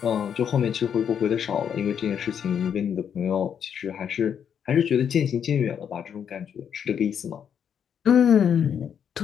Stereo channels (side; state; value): right; quieter; 8.1 dB